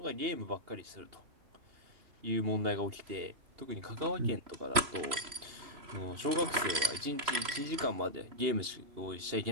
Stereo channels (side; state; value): left; late; 3.0 ms